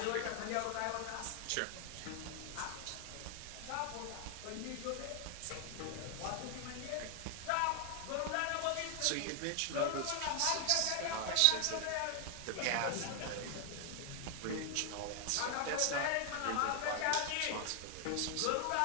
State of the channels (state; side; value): different; both; correlation 0.00